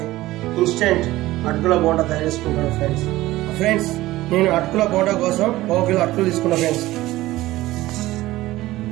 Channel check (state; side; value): quieter; left; 17.1 dB